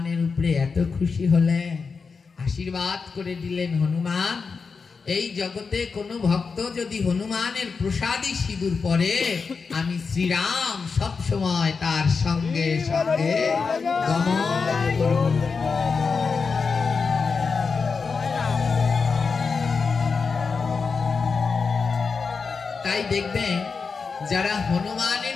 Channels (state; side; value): quieter; right; 5.0 dB